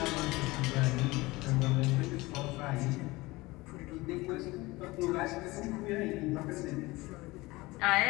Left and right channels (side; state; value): right; quieter; 21.3 dB